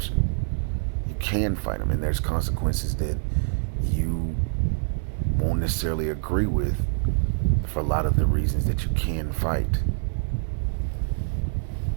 You can fight them, and there's consequences that you won't necessarily agree with for a lot of the reasons that you can fight.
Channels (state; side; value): silent; left; 61 dB below the other